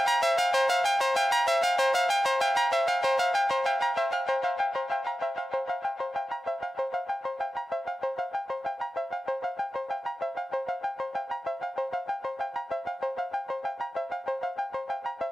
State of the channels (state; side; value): normal; both; correlation 0.93